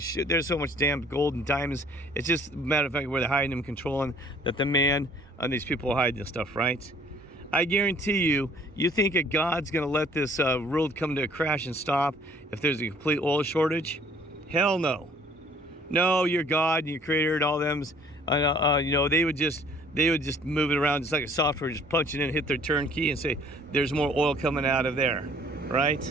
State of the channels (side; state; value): both; normal; correlation 0.57